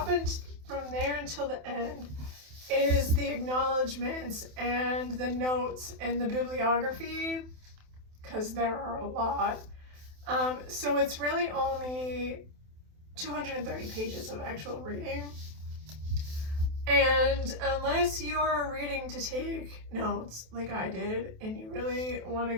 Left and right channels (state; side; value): late; left; 27 ms